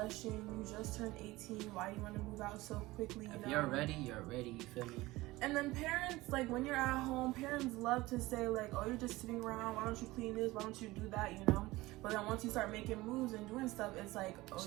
You just turned 18. Why do you want to move out so quickly? If you're ready, you're ready. You feel me? And then parents, like when you're at home, parents love to say like, oh, you're just sitting around. Why don't you clean this? Why don't you do that? You know? But then once you start making moves and doing stuff, it's like, oh,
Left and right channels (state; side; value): quieter; left; 19.4 dB